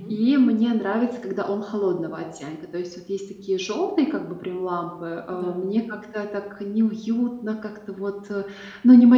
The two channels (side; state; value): both; identical; correlation 1.00